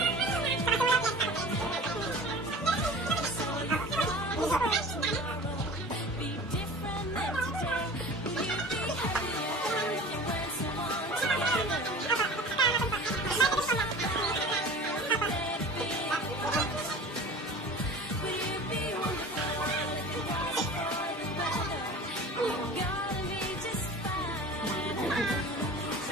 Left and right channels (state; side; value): normal; both; correlation 0.39